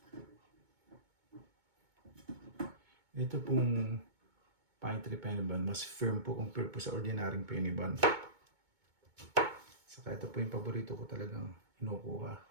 Ito pong pine tree penny bun, mas firm po compare po sa ordinaryong penny bun. Saka ito po yung paborito ko talagang inukuha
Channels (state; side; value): late; left; 2.2 ms